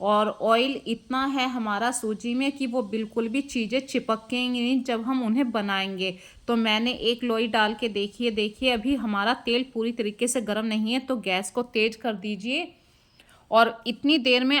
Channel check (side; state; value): both; identical; correlation 1.00